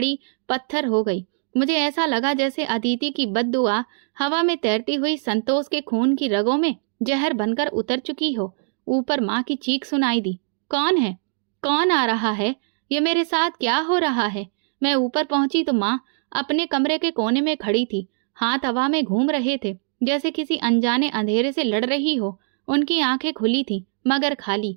पत्थर हो गई। मुझे ऐसा लगा जैसे अदिति की बद्दुआ हवा में तैरती हुई संतोष के खून की रगों में जहर बनकर उतर चुकी हो। ऊपर माँ की चीख सुनाई दी, कौन है? कौन आ रहा है? ये मेरे साथ क्या हो रहा है? मैं ऊपर पहुंची तो माँ अपने कमरे के कोने में खड़ी थी, हाथ हवा में घूम रहे थे, जैसे किसी अनजाने अंधेरे से लड़ रही हो। उनकी आंखें खुली थीं, मगर खाली।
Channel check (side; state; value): left; silent; 64 dB below the other